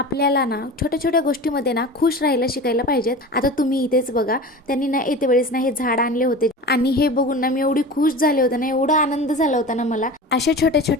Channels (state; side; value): normal; both; correlation 0.33